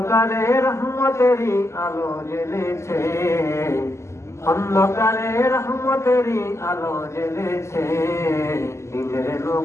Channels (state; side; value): late; right; 0.13 ms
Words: রহমতেরই আলো জ্বেলেছে, অন্ধকারে রহমতেরই আলো জ্বেলেছে, দিনের